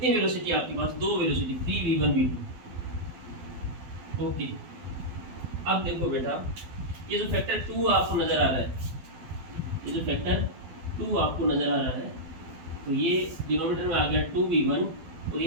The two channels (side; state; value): left; late; 12 ms